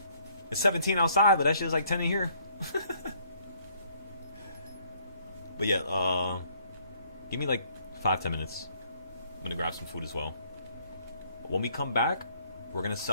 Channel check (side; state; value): both; inverted; correlation -0.64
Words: It's 17 outside, but that shit is like 10 in here. But yeah, give me like 5-10 minutes. I'm gonna grab some food as well. When we come back, we're gonna